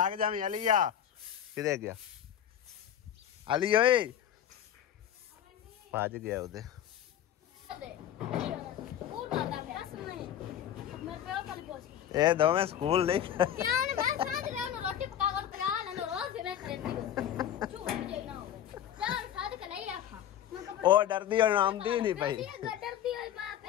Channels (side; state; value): right; quieter; 10.4 dB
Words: जावी। अलिया किधे गया? अली ओए भज गया उधे। ए दोवें स्कूल नहीं ओ डरदी और आमदी नहीं पई।